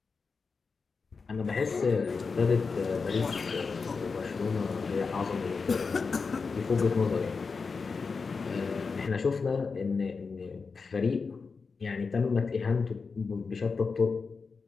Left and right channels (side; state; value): right; quieter; 4.8 dB